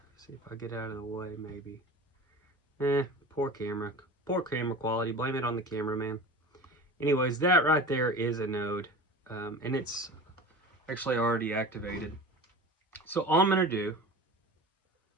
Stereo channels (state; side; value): normal; both; correlation 0.34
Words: See if I get out of the way, maybe. Poor camera quality. Blame it on the cameraman. Anyways, that right there is a node, and it's actually already activated. So all I'm going to do